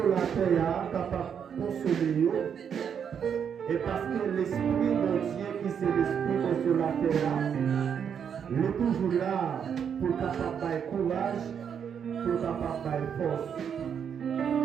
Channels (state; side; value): quieter; left; 7.7 dB